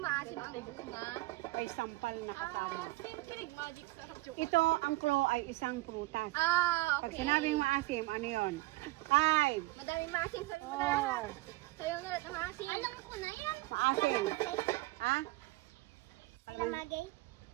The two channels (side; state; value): left; quieter; 20.1 dB